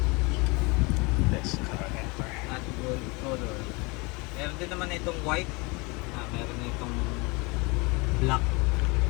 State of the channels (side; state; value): right; quieter; 27.3 dB